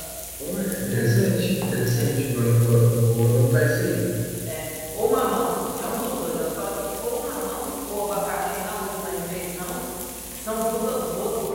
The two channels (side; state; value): both; identical; correlation 1.00